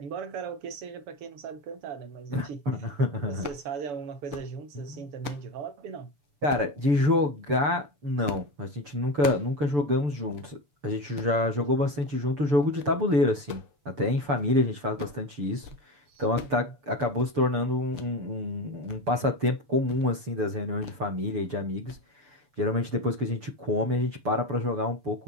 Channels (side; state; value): left; late; 6.8 ms